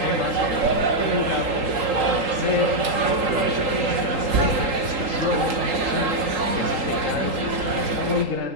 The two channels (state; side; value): late; left; 3.8 ms